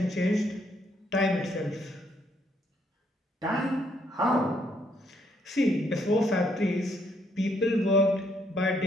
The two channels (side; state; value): both; normal; correlation 0.71